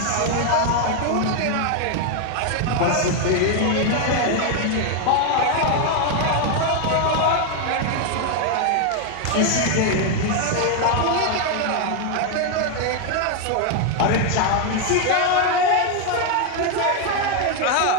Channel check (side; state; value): both; different; correlation 0.01